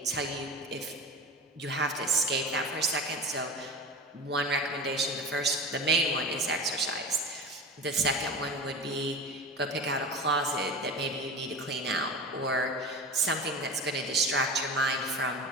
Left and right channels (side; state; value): both; normal; correlation 0.30